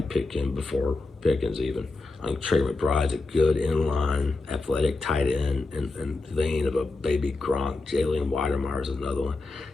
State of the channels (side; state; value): right; quieter; 3.4 dB